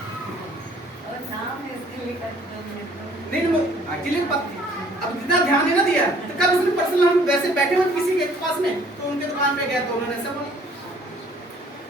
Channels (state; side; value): normal; both; correlation 0.57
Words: नहीं, एक्चुअली अब जितना ध्यान नहीं ना दिया। तो कल उसने पर्सनल, हम वैसे बैठे हुए किसी के पास में, तो उनके दुकान पे गए तो उन्होंने ऐसा बोला।